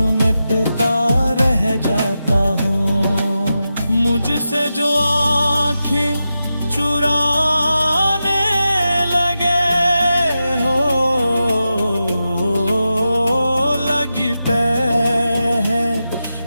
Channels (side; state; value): both; inverted; correlation -0.90